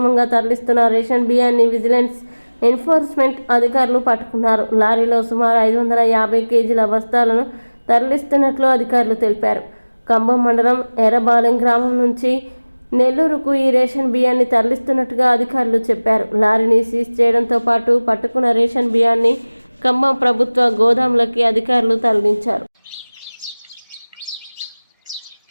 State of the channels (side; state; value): both; inverted; correlation -1.00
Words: తరలిస్తున్న రేషన్ బియ్యాన్ని విజిలెన్స్ ఎన్ఫోర్స్మెంట్ అధికారులు పట్టుకున్నారు. లారీలో సుమారు 550 కేజీల బస్తాలను తరలిస్తున్నట్లు అధికారులు తెలిపారు. కంభం మండలం ఎర్రబాలెం గ్రామం నుంచి నెల్లూరుకు ఈ రేషన్ బియ్యాన్ని తరలిస్తున్నట్టుగా అధికారులు చెప్పారు. లారీని సీజ్ చేయడంతో పాటు పట్టుకున్న రేషన్ బియ్యాన్ని ఖమ్మం ప్రభుత్వ గోదాములకి అధికారులు తరలించారు.